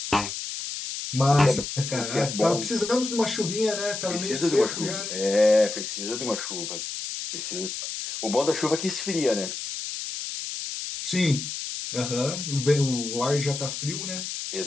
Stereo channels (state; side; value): noise; left; hiss, 6 dB below the sound